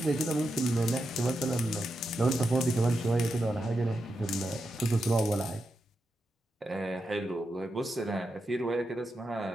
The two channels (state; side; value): normal; both; correlation 0.87